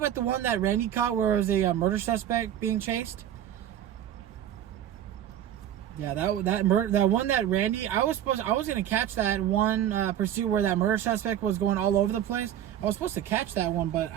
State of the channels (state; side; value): quieter; left; 10.8 dB